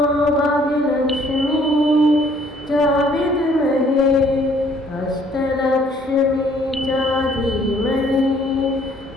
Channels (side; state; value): both; normal; correlation 0.61